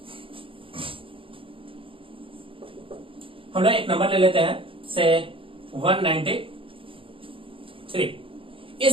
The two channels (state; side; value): late; left; 0.26 ms